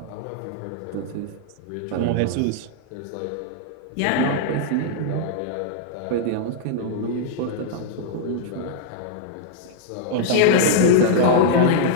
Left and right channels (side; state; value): both; different; correlation -0.01